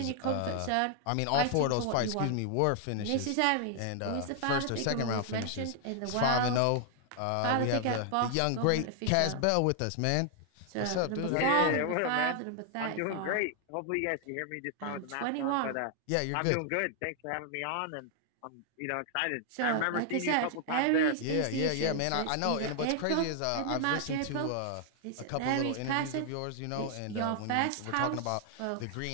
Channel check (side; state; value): both; different; correlation 0.00